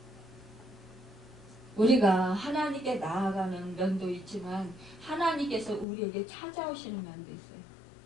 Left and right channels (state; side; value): drops out; right; at 5.9 s